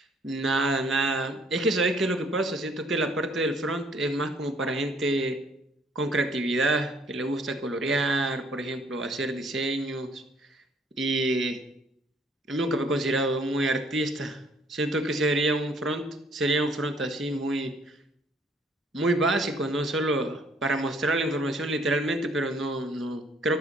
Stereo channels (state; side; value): normal; both; correlation 0.62